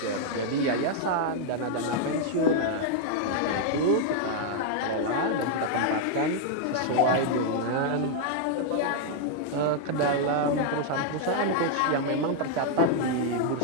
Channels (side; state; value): both; different; correlation -0.01